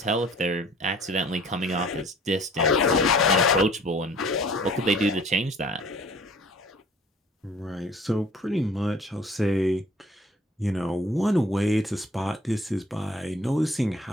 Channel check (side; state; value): both; normal; correlation 0.52